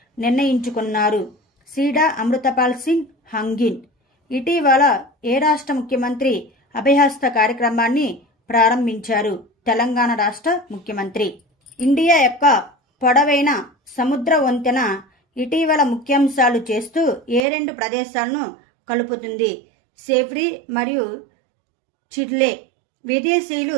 నిర్ణయించుకున్నారు? సీడా అమృతపాల్ సింగ్ హంగిన్. ఇటీవల ఏ రాష్ట్ర ముఖ్యమంత్రి అభయహస్త కార్యక్రమాన్ని ప్రారంభించారు? తెలంగాణ రాష్ట్ర ముఖ్యమంత్రి. ఇండియా యొక్క పొడవైన సముద్ర వంతెన ఇటీవల ముఖ్యాంశాలు చేస్తూ ఏ 2 ప్రదేశాలను కలుపుతుంది? సేవ్రీ మరియు చిర్లే. విదేశీయులు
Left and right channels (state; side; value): drops out; left; at 17.4 s